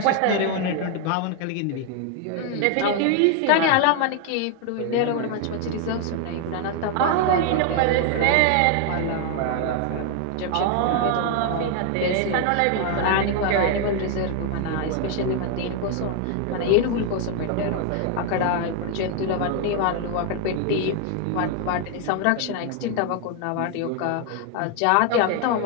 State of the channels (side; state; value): both; different; correlation 0.00